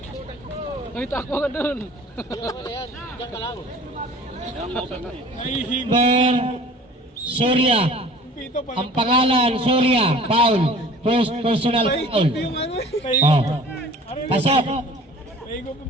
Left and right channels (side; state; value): both; normal; correlation 0.47